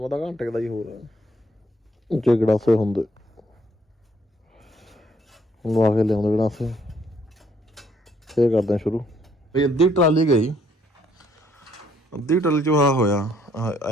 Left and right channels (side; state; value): both; normal; correlation 0.68